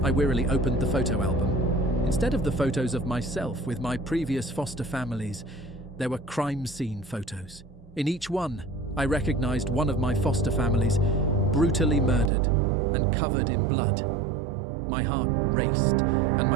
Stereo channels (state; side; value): drops out; left; at 12.3 s